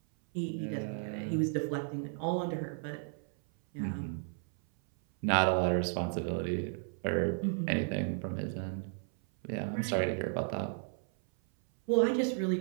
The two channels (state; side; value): silent; left; 55 dB below the other